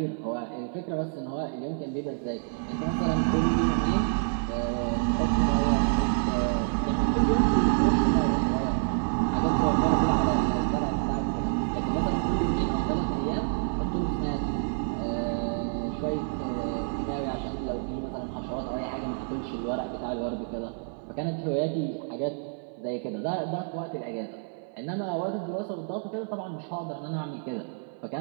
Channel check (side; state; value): left; silent; 57 dB below the other